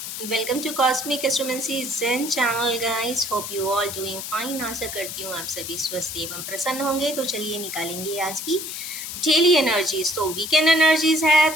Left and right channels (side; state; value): left; noise; hiss, 7 dB below the sound